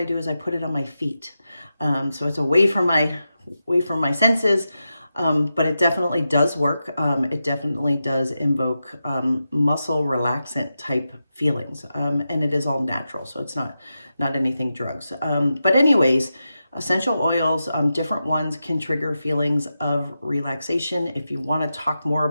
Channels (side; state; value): both; inverted; correlation -0.90